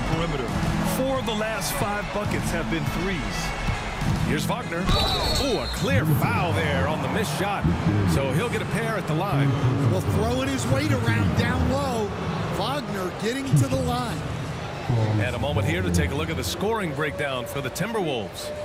perimeter. 4 of the last 5 buckets have been threes. Here's Wagner. Oh, a clear foul there on the missed shot. So he'll get a pair at the line. Well, throwing his weight around down low. Wagner getting to the line. And a moment here to take a look at the scoring breakdown for the Timberwolves.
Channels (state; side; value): identical; both; correlation 1.00